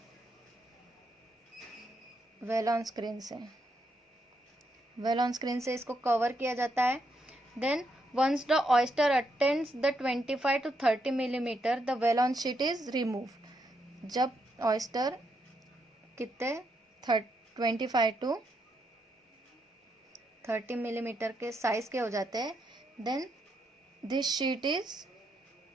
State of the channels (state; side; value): normal; both; correlation 0.79